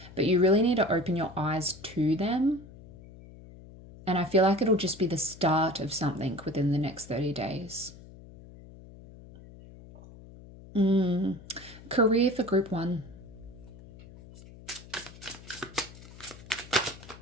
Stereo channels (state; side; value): noise; left; hum, 19 dB below the sound